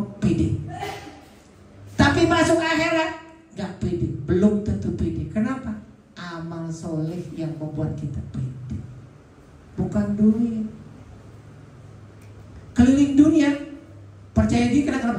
pede. Tapi masuk akhirat gak pede, belum tentu pede. Kenapa? Amal soleh yang membuat kita pede, bukan duit. Keliling dunia percaya diri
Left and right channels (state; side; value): identical; both; correlation 1.00